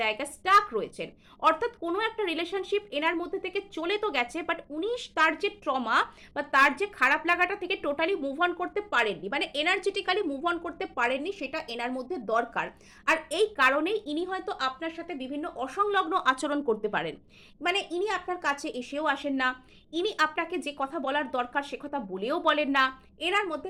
স্টাক রয়েছেন, অর্থাৎ কোনো একটা রিলেশনশিপ এনার মধ্যে থেকে চলে তো গেছে, বাট উনি তার যে ট্রমা বা তার যে খারাপ লাগাটা থেকে টোটালি মুভ অন করতে পারেননি, মানে এনার্জেটিক্যালি মুভ অন করতে পারেননি, সেটা এনার মধ্যে দরকার। আর এই কারণেই ইনি হয়তো আপনার সাথে বিভিন্ন অসংলগ্ন আচরণ করতে পারেন। মানে ইনি আপনার কাছে এসেও আসেন না, ইনি আপনাকে যে কথা বলার দরকার সে কথা বলেও বলেন না। এনার মধ্যে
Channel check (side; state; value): both; identical; correlation 1.00